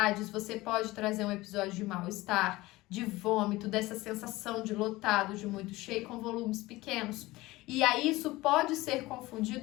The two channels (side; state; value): right; quieter; 19.5 dB